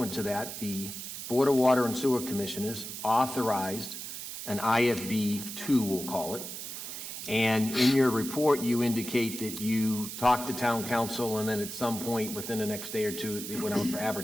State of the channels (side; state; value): right; noise; hiss, 8 dB below the sound